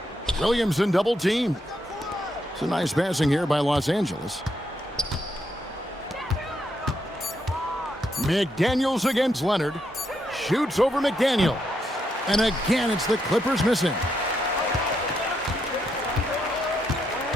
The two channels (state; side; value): normal; both; correlation 0.79